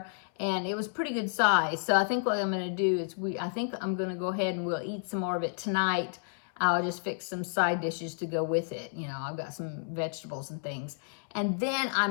and it was pretty good size. So I think what I'm going to do is I think I'm going to go ahead and we'll eat some more of it tonight. I'll just fix some side dishes to go with it. You know, I've got some vegetables and things. And then I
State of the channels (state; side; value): silent; right; 57 dB below the other